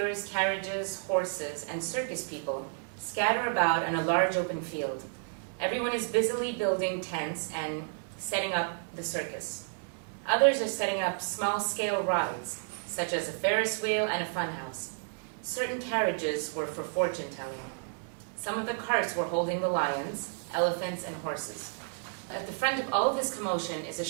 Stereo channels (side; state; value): left; silent; 57 dB below the other